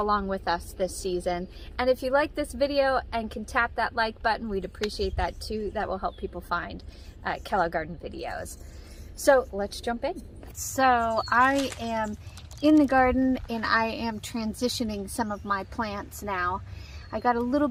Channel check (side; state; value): both; identical; correlation 1.00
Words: with us this season. And if you like this video and can tap that like button, we'd appreciate that too. That will help people find Pickle Garden videos. So let's jump in. So I am in the garden and I am transitioning some of my plants now. I got a little